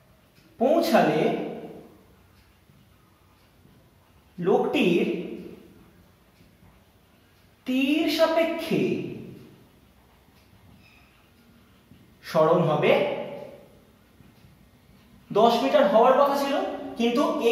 পৌঁছালে লোকটির তীর সাপেক্ষে সরণ হবে 10 মিটার হওয়ার কথা ছিল, কিন্তু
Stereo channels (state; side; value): identical; both; correlation 1.00